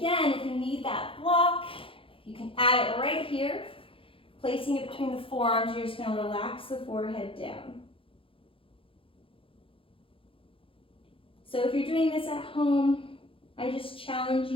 if you need that block, you can add it right here, placing it between the forearms. You're just going to relax the forehead down. So if you're doing this at home, I just challenge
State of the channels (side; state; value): right; late; 0.26 ms